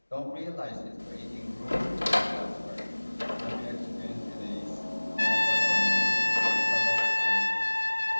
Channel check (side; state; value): both; inverted; correlation -1.00